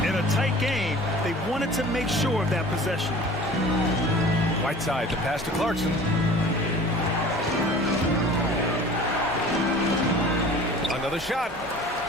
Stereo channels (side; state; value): both; normal; correlation 0.44